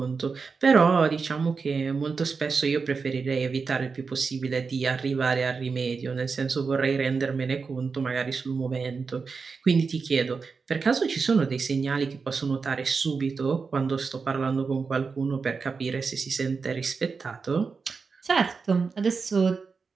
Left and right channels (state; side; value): quieter; left; 5.0 dB